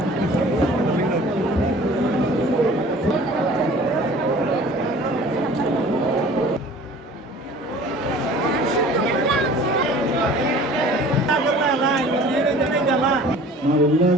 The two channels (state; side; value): normal; both; correlation 0.47